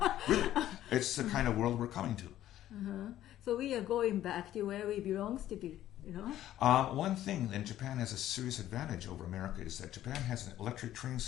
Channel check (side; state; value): right; quieter; 12.9 dB